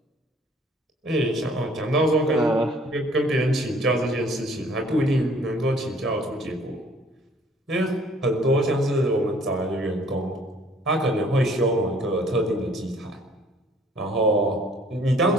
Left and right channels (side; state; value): both; normal; correlation 0.57